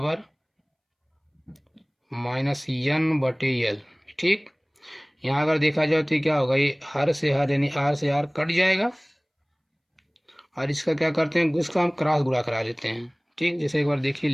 माइनस एन बटे यल। ठीक, यहाँ अगर देखा जाए तो क्या होगा, ये हर से हर यानी आर से आर कट जाएगा, और इसका क्या करते हैं, इसका हम क्रॉस गुणा करा लेते हैं। ठीक, जैसे एक बार देखिए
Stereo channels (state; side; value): identical; both; correlation 1.00